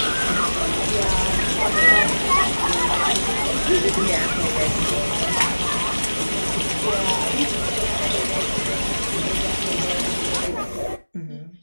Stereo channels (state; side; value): inverted; both; correlation -1.00